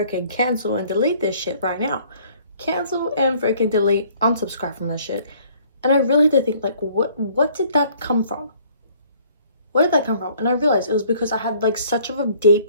cancel and delete this shit right now. Cancel and freaking delete, unsubscribe from this shit. And I really had to think, like, what did that come from? Where did that come from? And I realized it was because I had like such of a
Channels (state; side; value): inverted; both; correlation -0.58